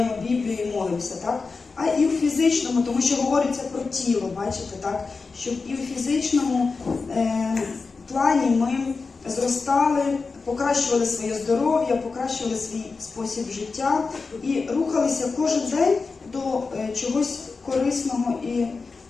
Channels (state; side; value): quieter; right; 4.4 dB